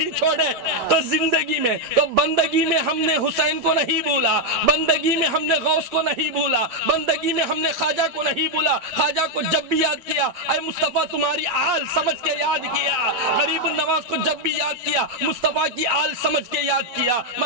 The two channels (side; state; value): left; late; 8.5 ms